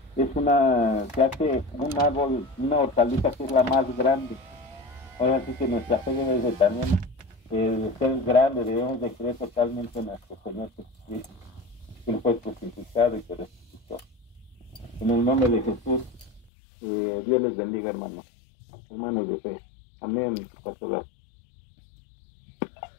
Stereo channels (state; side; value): drops out; right; at 16.4 s